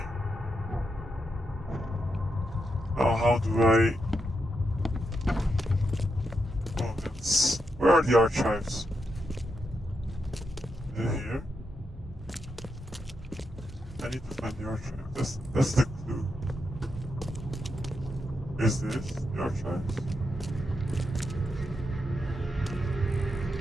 Now how do I... Oh, it's... Where are the archives? Is it here? I need to find the archive. That's the clue. Is this the archives?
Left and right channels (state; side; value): normal; both; correlation 0.84